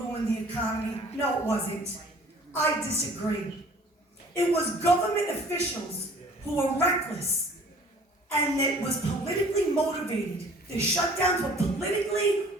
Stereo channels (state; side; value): normal; both; correlation 0.51